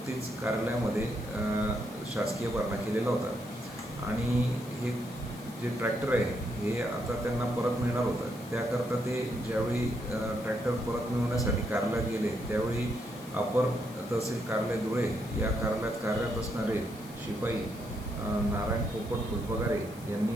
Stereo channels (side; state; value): left; noise; hiss, 19 dB below the sound